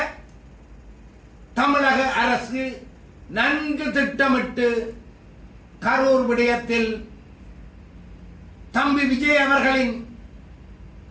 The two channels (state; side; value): identical; both; correlation 1.00